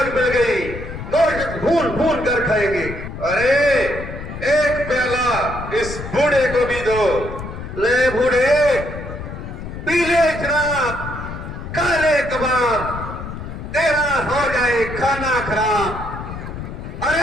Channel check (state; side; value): noise; left; rumble, 9 dB below the sound